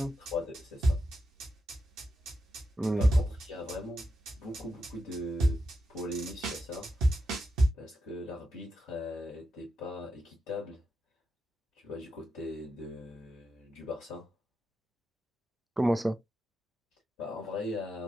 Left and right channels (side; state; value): both; normal; correlation 0.87